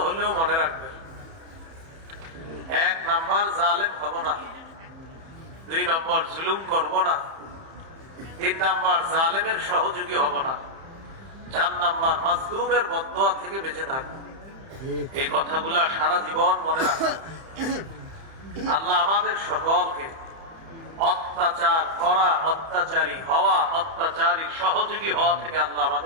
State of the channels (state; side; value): late; left; 31 ms